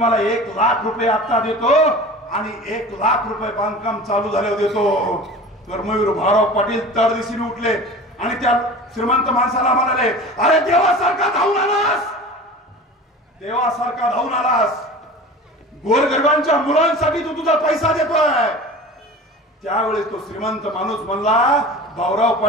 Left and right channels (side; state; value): both; normal; correlation 0.37